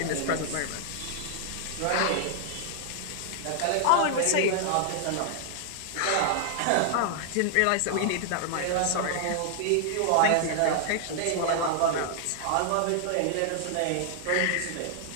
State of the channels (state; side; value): different; both; correlation 0.00